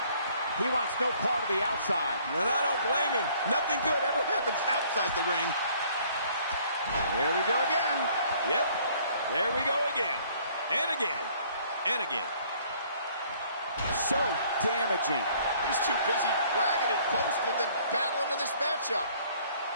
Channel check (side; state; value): both; inverted; correlation -0.59